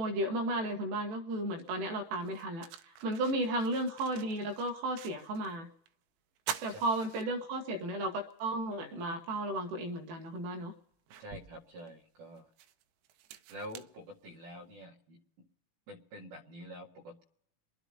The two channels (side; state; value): left; late; 18 ms